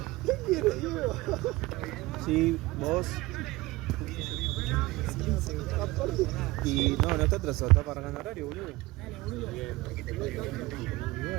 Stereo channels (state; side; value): quieter; left; 20.5 dB